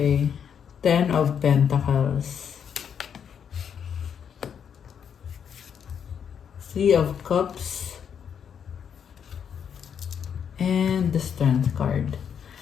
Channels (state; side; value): quieter; right; 7.8 dB